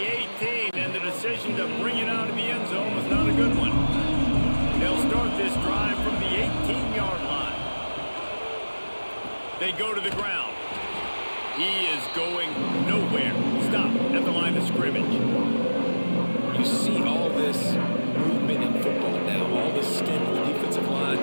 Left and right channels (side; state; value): both; inverted; correlation -1.00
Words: 18, and the decision to bring it out of the end zone was not a good one. They'll start this drive from the 18-yard line. They go to the ground. He is going nowhere. Stop at the line of scrimmage. You see all this movement in football now, all this stint in the defensive line.